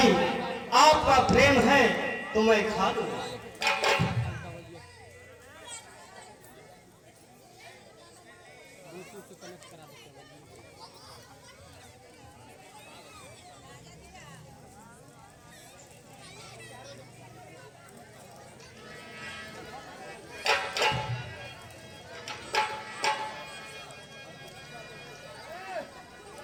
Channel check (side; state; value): both; identical; correlation 1.00